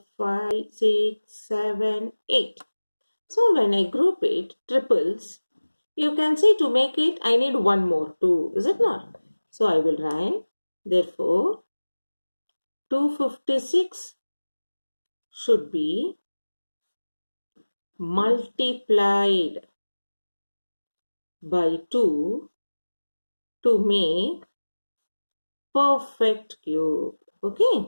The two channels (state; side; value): inverted; both; correlation -1.00